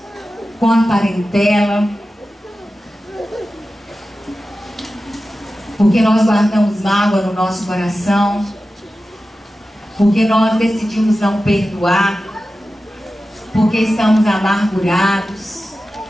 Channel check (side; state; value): both; normal; correlation 0.94